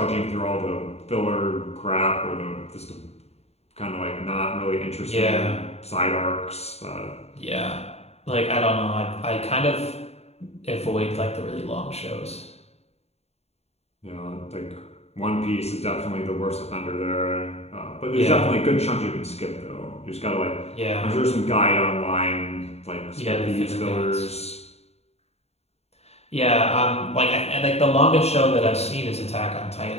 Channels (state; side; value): late; right; 0.30 ms